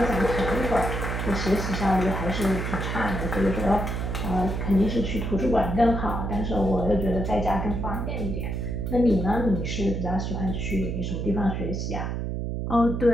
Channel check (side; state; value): right; noise; hum, 3 dB below the sound